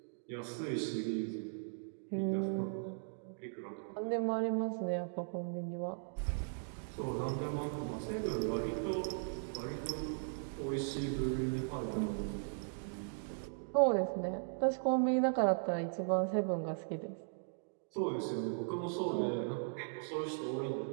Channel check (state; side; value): silent; left; digital silence